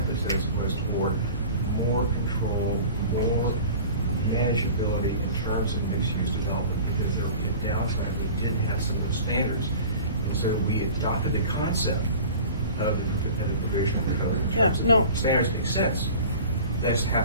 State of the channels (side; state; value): both; inverted; correlation -0.41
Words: was toward more control, more manageability in terms of mixed-use development, because there would be a downside. We did have some of those standards, and so we adopted the concept of the provision of the code. In Yeah, terms of no. Standards make sense. They just